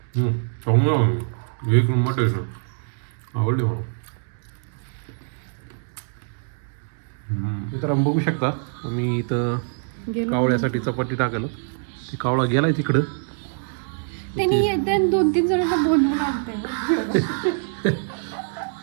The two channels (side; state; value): left; silent; digital silence